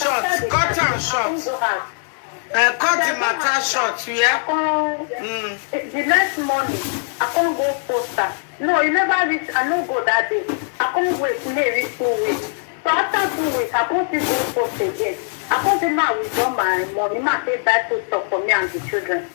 Cut and short. Cut the matter short, yeah? The next morning, I can't go poster. No, you never reach. I don't go that day. I can't wait. Maybe 2 weeks. So after 2 weeks, I can't still go post again. I can't say now withdraw my money, ma say buy food stuff for me and the children.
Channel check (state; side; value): silent; right; 57 dB below the other